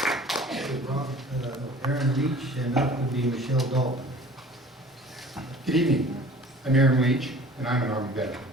everyone. Aaron Leach, and up would be Michelle Dalton. Good evening. I'm Aaron Leach, and I'm an Army veteran.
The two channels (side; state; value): both; normal; correlation 0.46